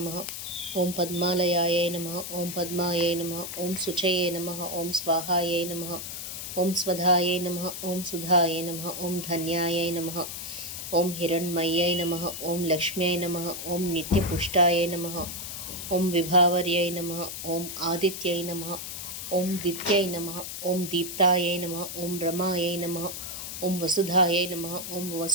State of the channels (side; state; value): left; noise; hiss, 7 dB below the sound